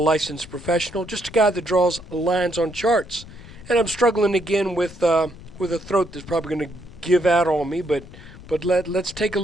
professional, just a guy that draws lines on charts. And I'm struggling again with a throat that's probably going to give out on me, but let's take a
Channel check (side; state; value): left; noise; rumble, 17 dB below the sound